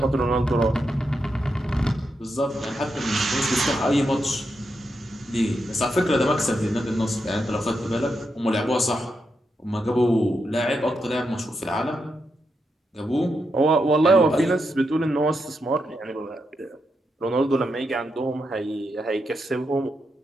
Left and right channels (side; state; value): both; normal; correlation 0.84